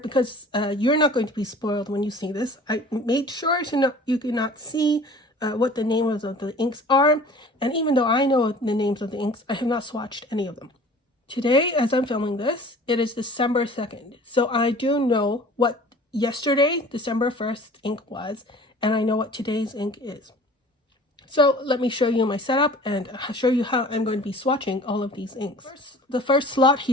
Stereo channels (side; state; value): both; normal; correlation 0.46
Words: you're not going to be spoiled when you see this. I made sure you cannot see what the names of the inks are. And even though I know the names of the inks, I have not swatched any of them. Today, as I'm filming this, it is December 2nd. So I do know what yesterday, December 1st ink was, and I know what today's ink is. So let me show you my setup and show you how I'm going to be swatching all of these inks. The first slot